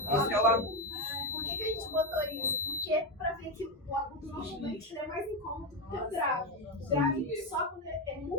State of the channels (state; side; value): normal; both; correlation 0.11